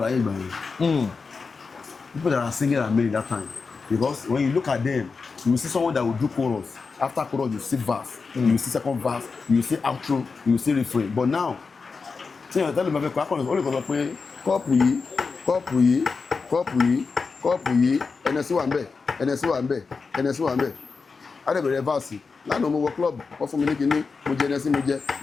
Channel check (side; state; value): right; quieter; 4.7 dB